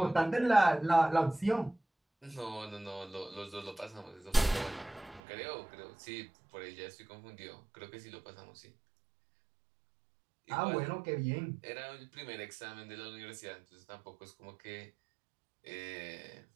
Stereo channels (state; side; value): drops out; left; at 5.2 s